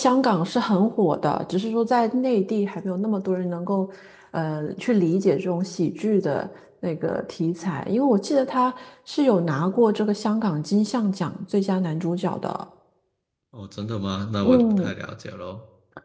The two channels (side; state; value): both; identical; correlation 1.00